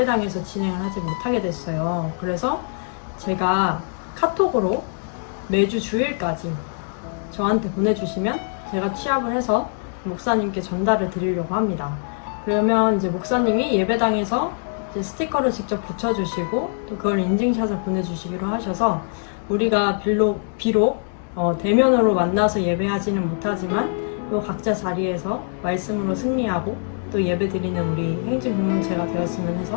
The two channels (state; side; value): silent; right; digital silence